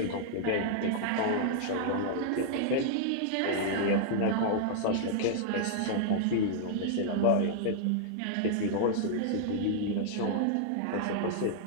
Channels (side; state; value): both; different; correlation -0.01